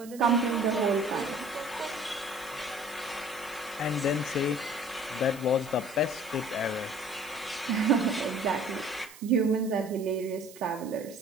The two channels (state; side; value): noise; right; hiss, 19 dB below the sound